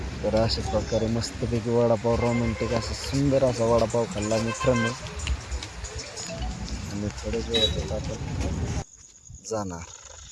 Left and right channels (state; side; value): identical; both; correlation 1.00